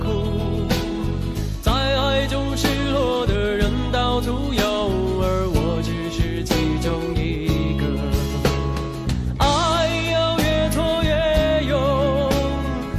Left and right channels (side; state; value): both; identical; correlation 1.00